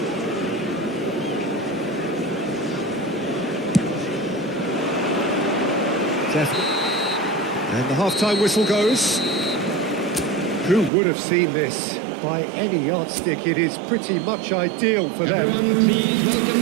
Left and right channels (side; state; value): left; drops out; at 10.9 s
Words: And the half-time whistle goes. Who would have seen this? By any yardstick, it is pretty much ideal for them. Everyone, please welcome